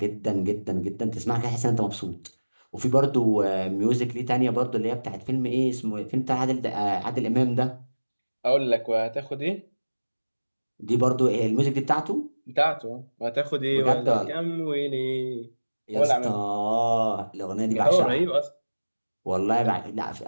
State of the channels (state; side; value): inverted; both; correlation -1.00